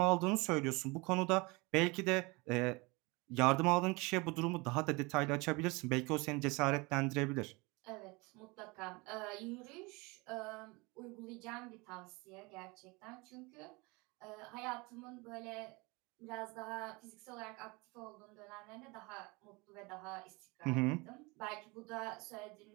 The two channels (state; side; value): quieter; left; 25.9 dB